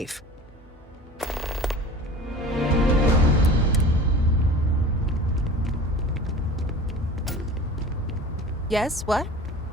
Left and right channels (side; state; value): both; normal; correlation 0.40